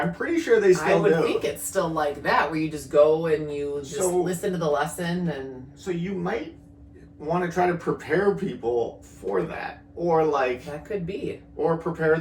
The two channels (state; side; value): identical; both; correlation 1.00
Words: pretty sure they still do. I would think it's still like that, where you just go and you just So- listen to the lesson and... So you might want to try to prepare people for that. Or, like... That could be. Or prepare